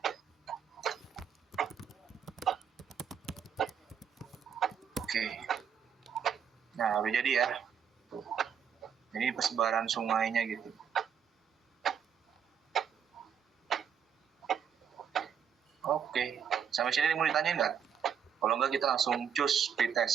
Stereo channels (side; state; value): left; quieter; 7.7 dB